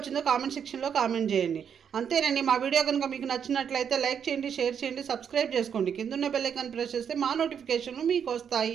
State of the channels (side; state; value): left; quieter; 7.7 dB